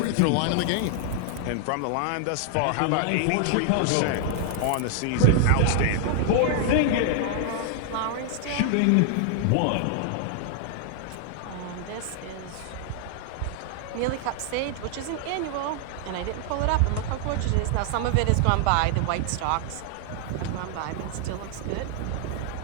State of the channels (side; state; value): both; different; correlation 0.00